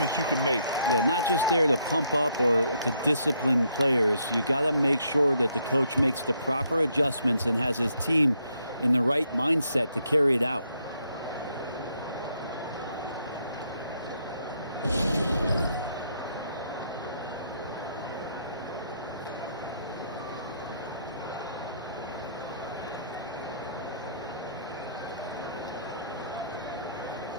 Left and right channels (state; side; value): inverted; both; correlation -0.72